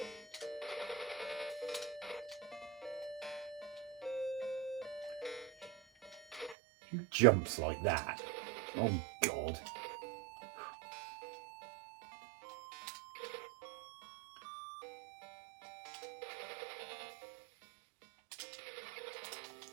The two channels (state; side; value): drops out; left; at 6.6 s